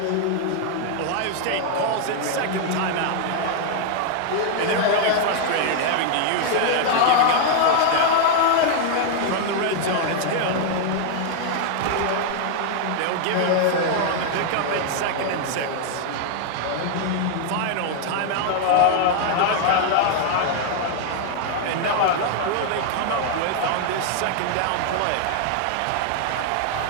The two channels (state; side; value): different; both; correlation 0.00